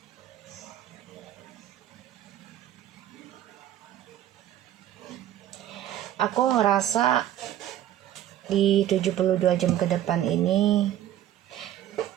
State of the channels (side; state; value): left; quieter; 12.1 dB